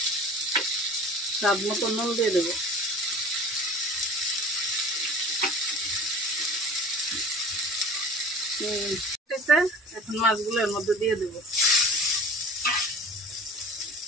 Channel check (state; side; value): normal; both; correlation 0.43